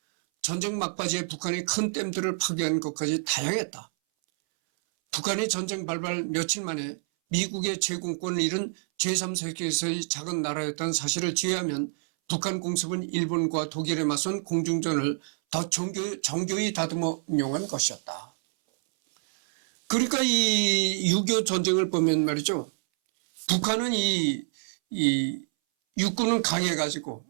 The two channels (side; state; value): left; silent; 60 dB below the other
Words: 전쟁 막바지에 북한이 큰 댐들을 파괴하는 것까지 다양했다. 북한이 전쟁 발발 며칠 만에 미국의 제공권을 잃은 제3세계에서의 작은 나라였다는 사실을 제외하면 북한 공습은 일본과 독일에 맞선 공중전을 더 정교히 다듬어 운용한 것이었다. 그러니까 이 6.25 전쟁을 보면 말이죠. 북한은 이 육군은 강해가지고,